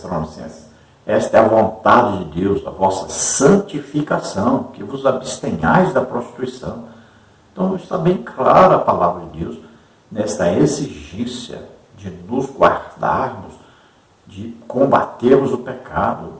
Esta é a vontade de Deus, a vossa santificação, que vos abstenhais da prostituição. Então está bem clara a palavra de Deus nesta exigência de nos guardarmos, de combatermos o pecado,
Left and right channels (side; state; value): both; identical; correlation 1.00